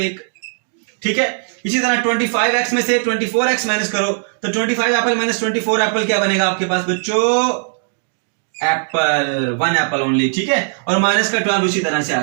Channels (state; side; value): silent; left; digital silence